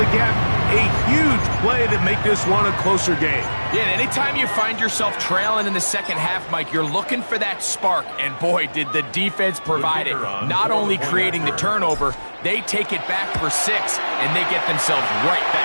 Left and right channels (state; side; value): inverted; both; correlation -1.00